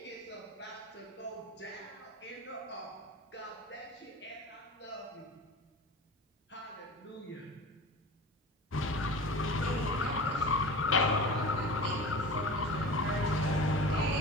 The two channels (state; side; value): normal; both; correlation 0.34